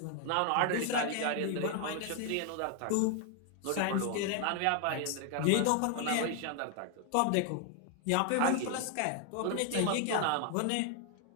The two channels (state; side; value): different; both; correlation 0.00